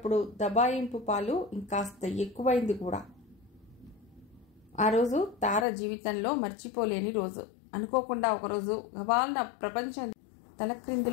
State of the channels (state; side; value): drops out; right; at 5.7 s